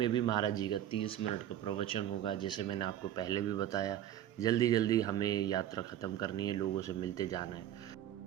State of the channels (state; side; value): quieter; left; 11.5 dB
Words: भी महाराज जी का 30 मिनट का प्रवचन होगा। जैसे मैंने आपको पहले भी बताया, जल्दी हमें यात्रा ख़त्म करनी है, लोगों से मिलते जाना है।